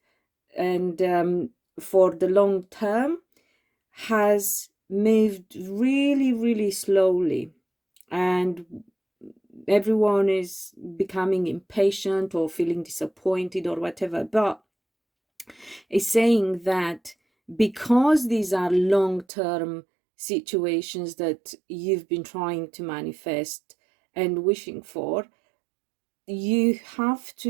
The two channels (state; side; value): drops out; left; at 19.2 s